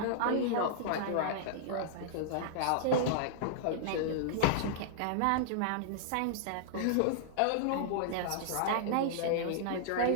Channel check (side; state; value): both; different; correlation -0.02